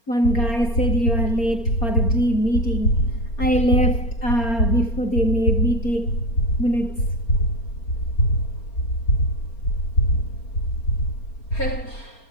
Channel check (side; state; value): right; late; 4.3 ms